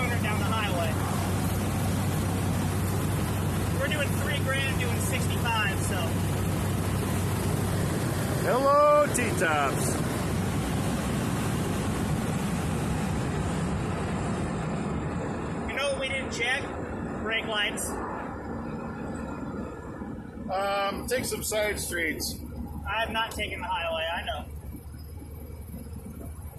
down the highway. We're doing $3,000, doing 65. So. Hello, T-tops. You know what we didn't check? Brake lights. Take some side streets. I have not taken the highway, I know.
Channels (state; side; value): identical; both; correlation 1.00